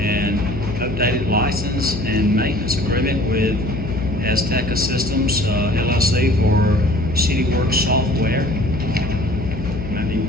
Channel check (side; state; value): left; noise; hum, 7 dB below the sound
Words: updated license and maintenance agreement with Azteca Systems LLC for CityWorks software. Maybe